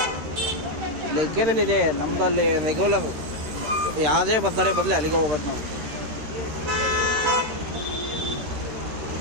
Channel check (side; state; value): left; late; 13 ms